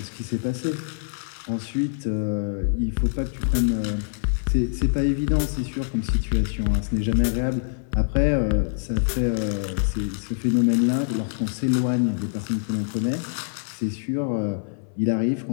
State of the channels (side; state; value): right; silent; 62 dB below the other